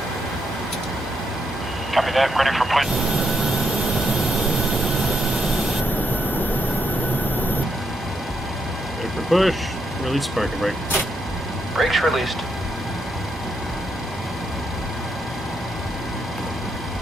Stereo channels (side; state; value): both; normal; correlation 0.80